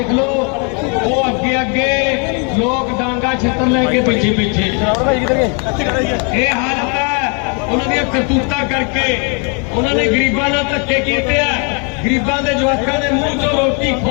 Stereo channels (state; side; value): quieter; right; 36.6 dB